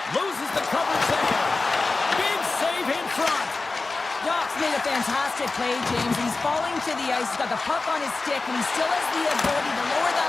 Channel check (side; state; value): right; quieter; 3.6 dB